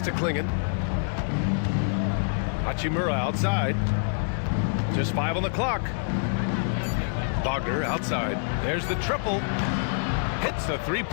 to Klingon. Hachimura outside. Just 5 on the clock. Wagner outside. There's the triple. Hits the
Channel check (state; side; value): silent; right; digital silence